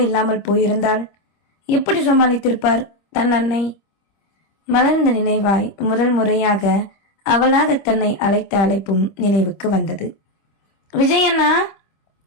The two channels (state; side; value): late; right; 25 ms